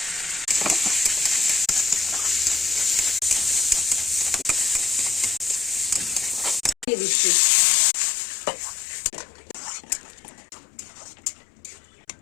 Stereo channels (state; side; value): drops out; right; at 6.9 s